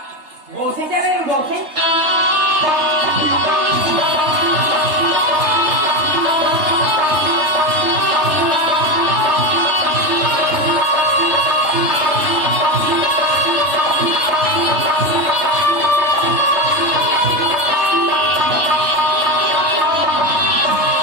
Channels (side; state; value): left; late; 3.3 ms